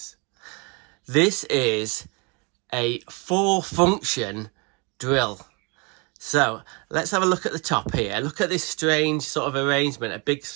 This is a 4-function drill. So let's have a look at the top here. Look at this strange sort of arrangement, a big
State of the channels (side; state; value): left; quieter; 31.3 dB